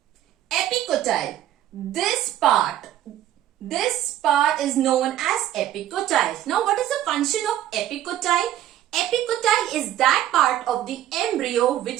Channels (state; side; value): quieter; left; 12.4 dB